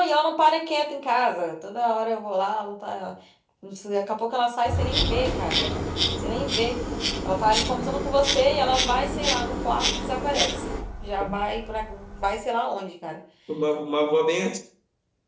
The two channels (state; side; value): identical; both; correlation 1.00